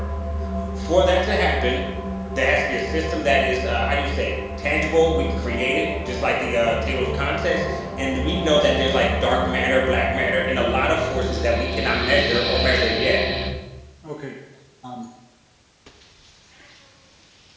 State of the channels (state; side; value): identical; both; correlation 1.00